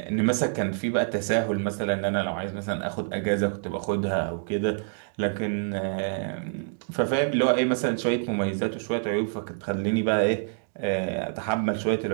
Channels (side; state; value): left; silent; digital silence